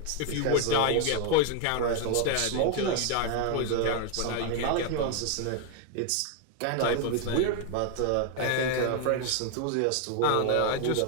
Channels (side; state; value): both; different; correlation 0.01